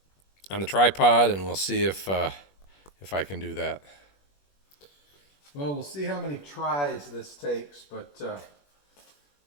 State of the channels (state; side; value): late; right; 21 ms